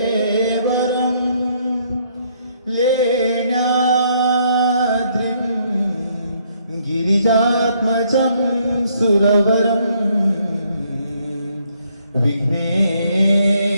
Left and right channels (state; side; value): inverted; both; correlation -0.69